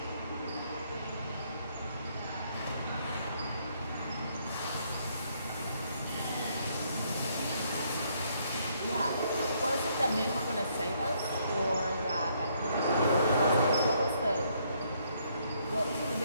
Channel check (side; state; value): both; inverted; correlation -0.70